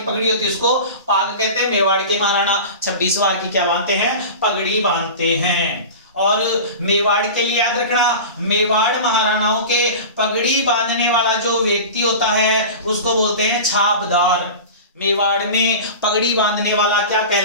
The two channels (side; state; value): both; inverted; correlation -0.32